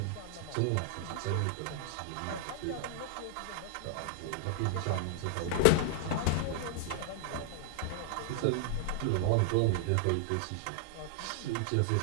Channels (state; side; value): different; both; correlation -0.01